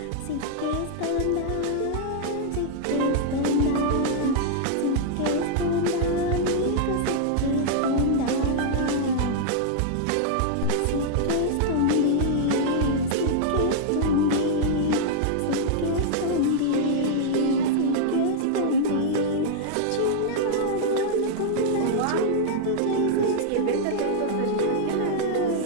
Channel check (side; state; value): both; different; correlation -0.01